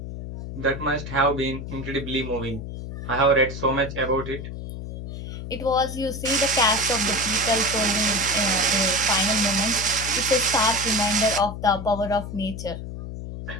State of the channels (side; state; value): left; noise; hum, 8 dB below the sound